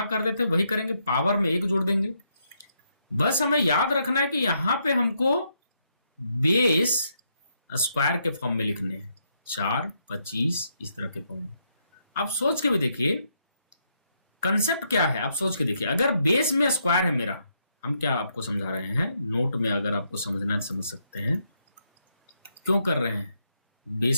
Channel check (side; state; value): both; inverted; correlation -0.77